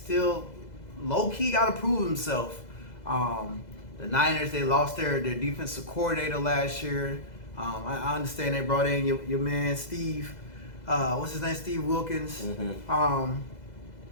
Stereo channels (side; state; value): right; late; 2.0 ms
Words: low key got to prove himself. The Niners, they lost their defensive coordinator last year. I understand they brought in your man Steve. What's his name? Steve Wilkins.